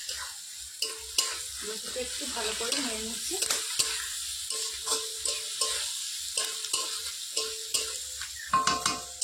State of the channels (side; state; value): both; identical; correlation 1.00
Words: রসুনটা একটু ভালো করে নেড়ে নিচ্ছি।